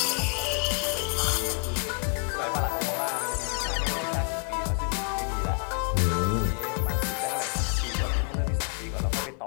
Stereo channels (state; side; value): quieter; right; 36.3 dB